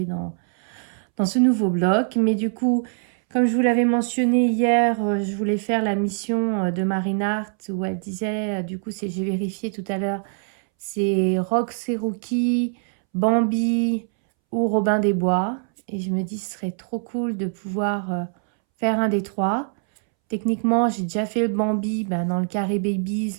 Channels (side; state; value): left; silent; 63 dB below the other